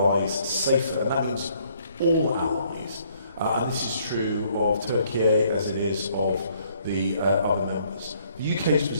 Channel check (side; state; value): both; inverted; correlation -0.65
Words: safer. And that means all allies. And this is true of Turkey as it is of the other members. The UK's